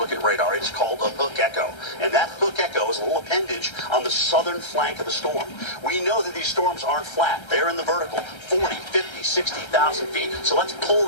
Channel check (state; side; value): late; right; 1.3 ms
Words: at radar. It's called a hook echo. And that hook echo is a little appendage on the southern flank of the storm. We know that these storms aren't flat. They're in the vertical, 40, 50, 60,000 feet. So let's pull